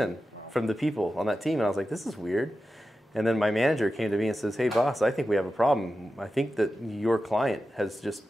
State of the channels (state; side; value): normal; both; correlation 0.92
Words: from the people on that team. And I was like, this is weird. And then my manager came to me and says, hey, boss, I think we have a problem. I think that your client has just